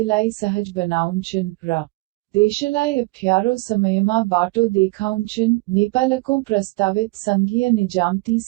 सहज बनाउँछन् र देशलाई अप्ठ्यारो समयमा बाटो देखाउँछन्। नेपालको प्रस्तावित संघीय निजामती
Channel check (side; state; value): left; quieter; 24.1 dB